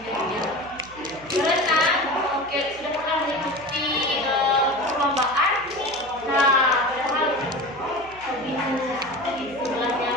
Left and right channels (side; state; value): right; noise; hum, 22 dB below the sound